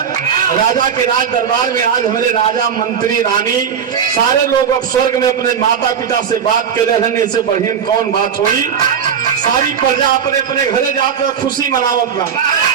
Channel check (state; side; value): quieter; left; 7.6 dB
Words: राजा के राज दरबार में आज हमारे राजा मंत्री रानी सारे लोग अब स्वर्ग में अपने माता पिता से बात कर रहे हैं। इससे बढ़िया कौन बात हुई। सारी प्रजा अपने अपने घरे जाकर खुशी मनावत